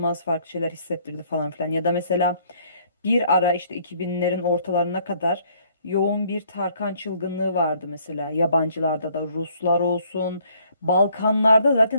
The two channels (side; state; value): both; inverted; correlation -0.63